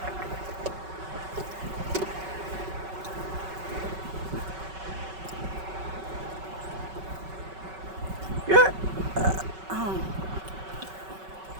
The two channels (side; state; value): left; late; 5.3 ms